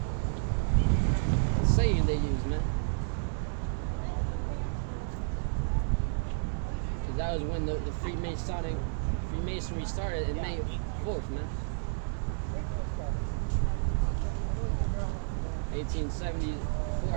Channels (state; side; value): silent; left; digital silence